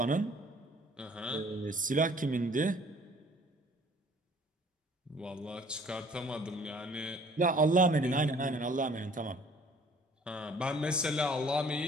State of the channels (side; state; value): both; normal; correlation 0.55